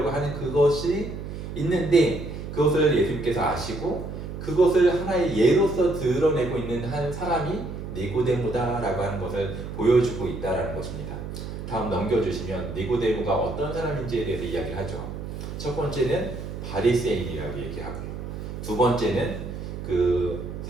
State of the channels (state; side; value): noise; right; hum, 8 dB below the sound